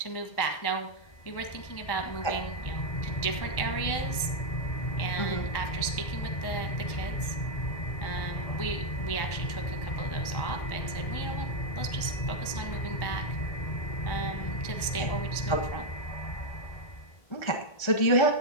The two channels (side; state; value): right; late; 1.1 ms